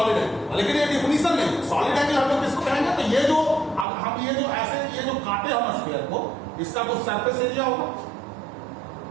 एंगल। लेकिन ये डिफिनेशन नहीं है। सॉलिड एंगल हम लोग किसको कहेंगे, तो ये जो हम ये जो ऐसे ये जो काटे हम स्फीयर को, इसका कुछ सरफेस एरिया होगा,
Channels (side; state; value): left; drops out; at 3.9 s